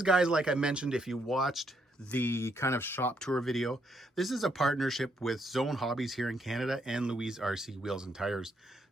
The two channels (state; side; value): normal; both; correlation 0.75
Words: guys, like I mentioned, if you watched the kind of shop tour video, this is a partnership with Zone Hobbies here in Canada and Louise RC Wheels and Tires.